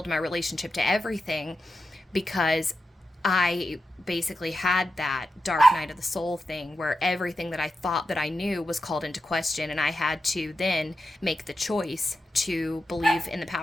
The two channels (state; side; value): normal; both; correlation 0.89